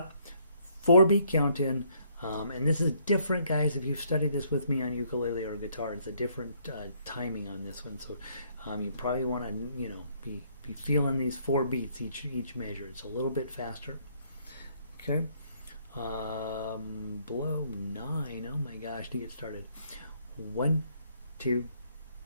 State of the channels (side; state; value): both; inverted; correlation -0.67